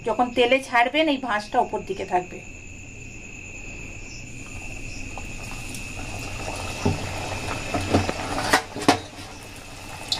যখন তেলে ছাড়বেন এই ভাঁজটা ওপর দিকে থাকবে।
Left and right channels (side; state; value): both; identical; correlation 1.00